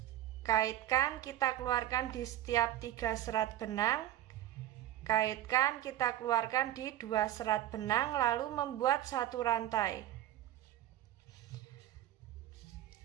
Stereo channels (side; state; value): left; quieter; 13.0 dB